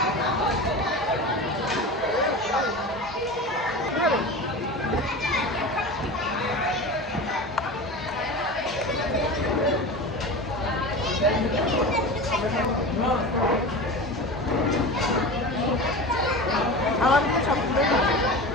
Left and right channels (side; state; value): both; normal; correlation 0.30